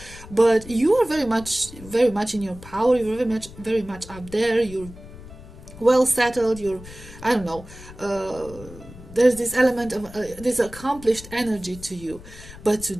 But you are very much in your power. You're very much up there. You're well settled. You're, I don't know. There's this element of this accomplished energy to you. But to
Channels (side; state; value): left; noise; rumble, 17 dB below the sound